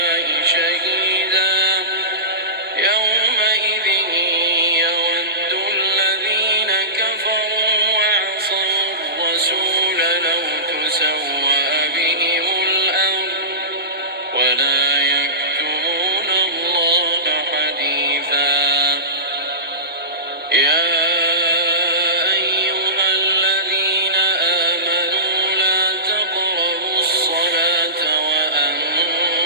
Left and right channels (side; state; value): both; normal; correlation -0.20